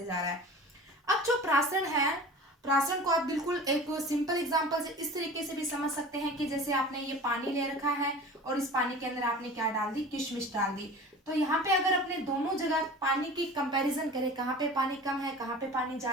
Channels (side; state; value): both; normal; correlation 0.39